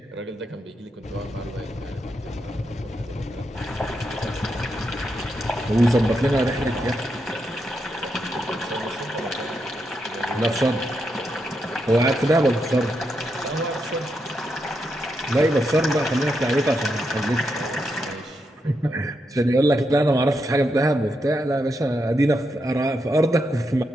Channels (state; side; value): normal; both; correlation 0.83